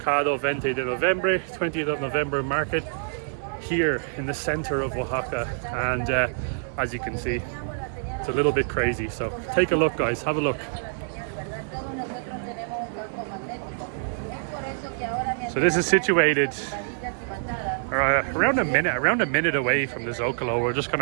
20 de Noviembre, 20th of November market here in the center of Oaxaca, and as you can see, it's a little bit crazy. So take a look, guys, have a look. So this is situated around a minute away from the Zocalo. We're just going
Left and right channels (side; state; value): left; silent; digital silence